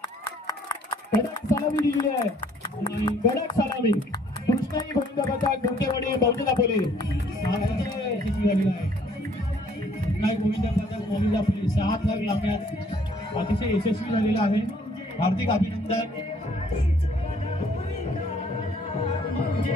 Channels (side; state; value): both; normal; correlation 0.61